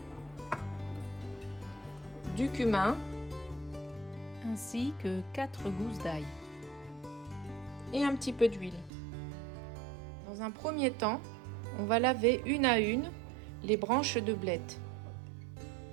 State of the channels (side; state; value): left; drops out; at 8.9 s